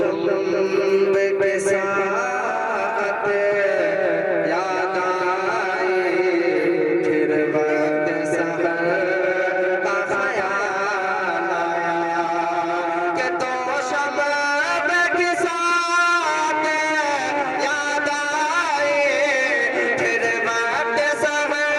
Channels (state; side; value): identical; both; correlation 1.00